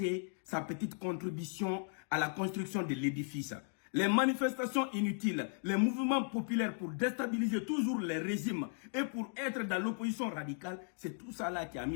sa petite contribution à la construction de l'édifice. Les manifestations inutiles, les mouvements populaires pour déstabiliser toujours les régimes et pour être dans l'opposition radicale, c'est tout ça là qui a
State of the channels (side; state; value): right; silent; 54 dB below the other